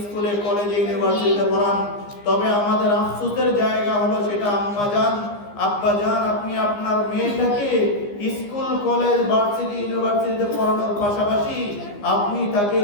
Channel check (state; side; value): late; right; 15 ms